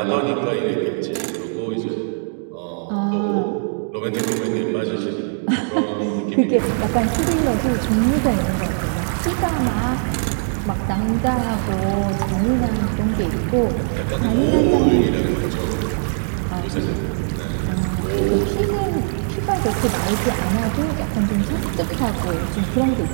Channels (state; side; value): silent; left; digital silence